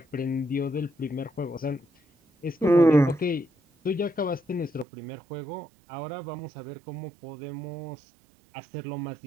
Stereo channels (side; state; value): left; drops out; at 4.9 s